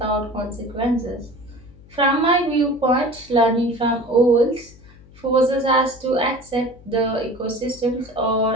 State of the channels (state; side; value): noise; left; hum, 23 dB below the sound